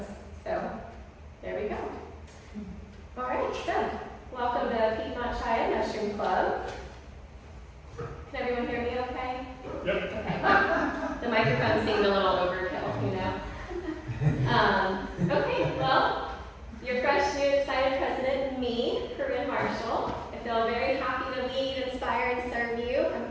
So there we go. All right, so welcome to Piedmont Triad Mushroom Club. Can everyone hear me okay? Yep. Okay. The microphone seemed a little overkill, you know. Okay, well, your fresh, new, excited president, me, Corrine Marshall. I feel very happy to lead, inspire, and serve you.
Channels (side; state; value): both; identical; correlation 1.00